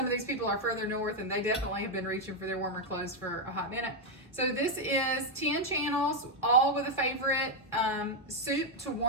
of these people are further north and they definitely have been reaching for their warmer clothes for a hot minute. So this is 10 channels, all with a favorite soup to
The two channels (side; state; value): both; normal; correlation 0.02